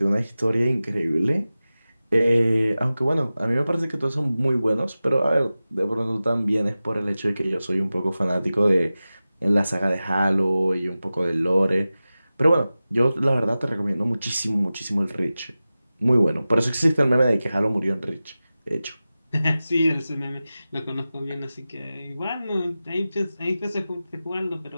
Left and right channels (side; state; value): both; inverted; correlation -0.95